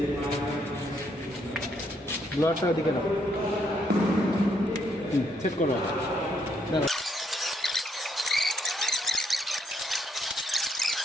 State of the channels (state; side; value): normal; both; correlation 0.73